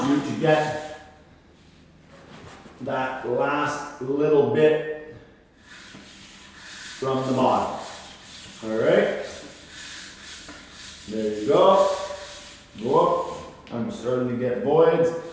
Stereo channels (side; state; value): both; identical; correlation 1.00